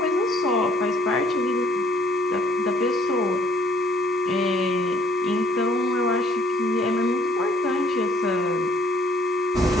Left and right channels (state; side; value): normal; both; correlation 0.61